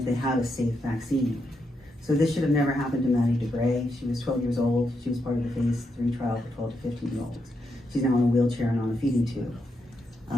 they had a safe vaccine. So this should have never happened to Maddie DeGray. She was 12 years old. She was part of the phase 3 trial for 12 to 15-year-olds. She's now in a wheelchair and on a feeding tube.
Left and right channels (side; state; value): both; normal; correlation 0.82